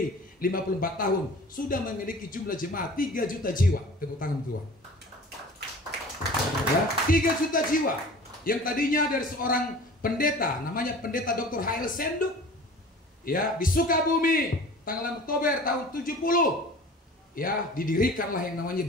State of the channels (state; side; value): normal; both; correlation 0.42